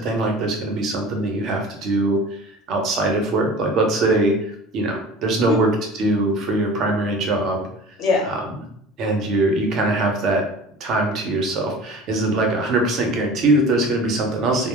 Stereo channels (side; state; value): both; normal; correlation 0.40